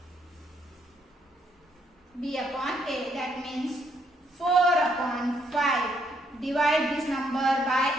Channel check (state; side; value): normal; both; correlation 0.72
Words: B upon A. That means 4 upon 5. Divide this number by